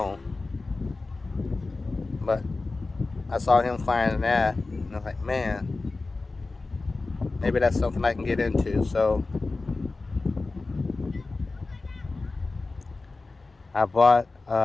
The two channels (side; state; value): right; quieter; 3.6 dB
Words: But I saw him flying that, and I was like, man, maybe that's something I can get into. So I bought